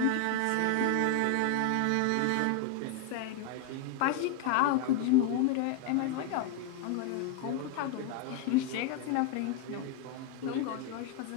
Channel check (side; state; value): both; different; correlation 0.01